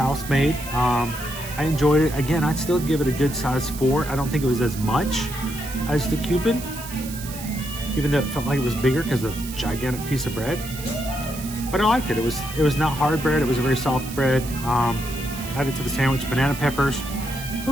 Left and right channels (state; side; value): noise; right; hiss, 12 dB below the sound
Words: made. I enjoyed it. Again, I'd still give it a good size 4. I don't think it was as much as the Cupid, even though it felt like it was bigger because of the gigantic piece of bread. But I liked it. It was not hard bread. It was a very soft bread. Added to the sandwich, banana peppers. It